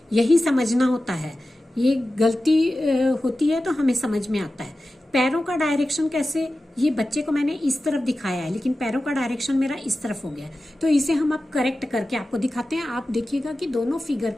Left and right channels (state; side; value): normal; both; correlation 0.94